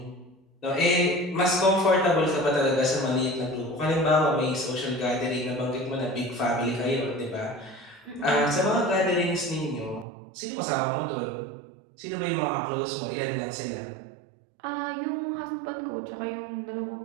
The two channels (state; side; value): drops out; left; at 10.1 s